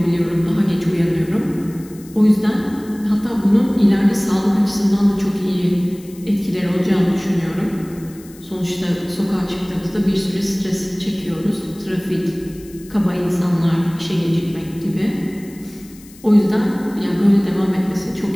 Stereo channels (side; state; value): left; noise; hiss, 23 dB below the sound